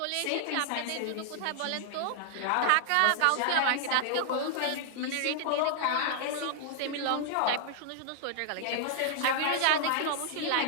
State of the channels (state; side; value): different; both; correlation 0.00